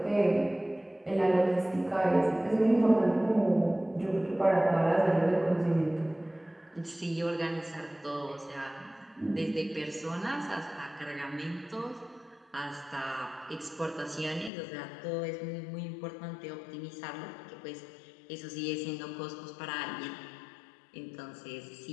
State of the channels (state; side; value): drops out; right; at 14.5 s